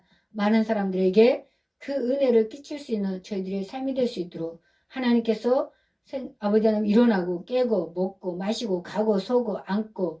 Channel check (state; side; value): identical; both; correlation 1.00